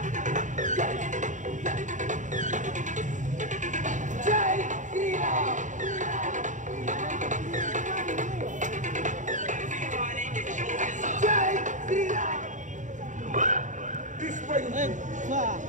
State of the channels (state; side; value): late; left; 0.36 ms